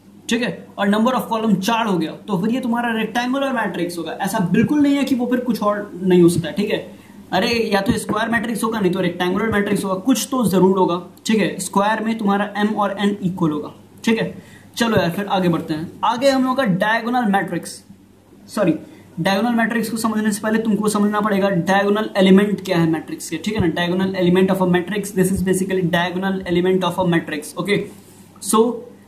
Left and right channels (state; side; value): identical; both; correlation 1.00